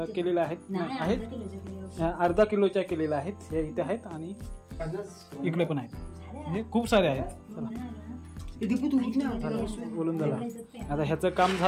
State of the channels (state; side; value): identical; both; correlation 1.00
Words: केलेल्या आहेत, अर्धा किलोच्या केलेल्या आहेत. हे इथे आहेत आणि इकडे पण आहेत, म्हणजे खूप सारे आहेत. बोलून झालं. आता ह्याचं काम